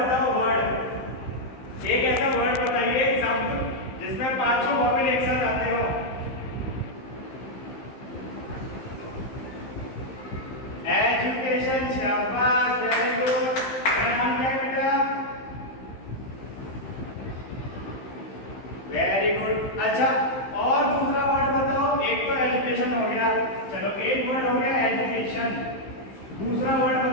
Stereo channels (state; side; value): late; right; 15 ms